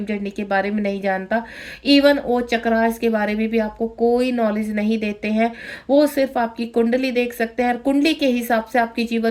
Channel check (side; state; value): both; identical; correlation 1.00